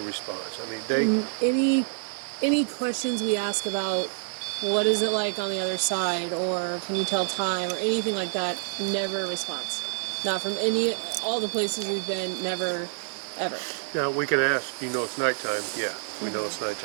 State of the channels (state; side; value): silent; left; digital silence